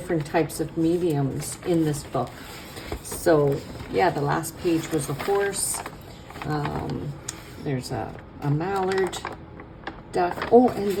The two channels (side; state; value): both; identical; correlation 1.00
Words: types of mediums in this book. So yeah, the last page was a horse. There's a mallard duck. Oh, and